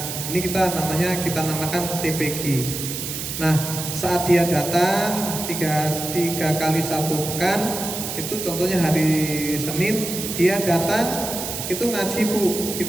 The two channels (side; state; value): right; noise; hiss, 5 dB below the sound